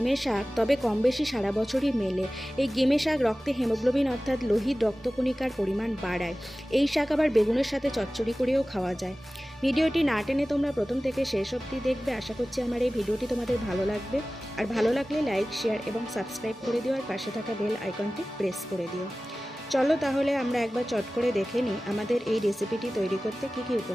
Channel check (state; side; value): normal; both; correlation 0.97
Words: শাক, তবে কম বেশি সারা বছরই মেলে। এই গিমে শাক রক্তে হিমোগ্লোবিন অর্থাৎ লোহিত রক্তকণিকার পরিমাণ বাড়ায়। এই শাক আবার বেগুনের সাথে চচ্চড়ি করেও খাওয়া যায়। ভিডিওটি না টেনে তোমরা প্রথম থেকে শেষ অবধি দেখবে। আশা করছি আমার এই ভিডিওটি তোমাদের ভালো লাগবে। আর ভালো লাগলে লাইক, শেয়ার এবং সাবস্ক্রাইব করে দিও, আর পাশে থাকা বেল আইকনটি প্রেস করে দিও। চলো তাহলে আমরা একবার চট করে দেখে নিই আমাদের এই রেসিপিটি তৈরি করতে কী কী